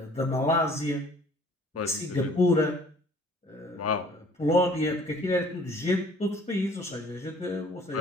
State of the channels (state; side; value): normal; both; correlation 0.55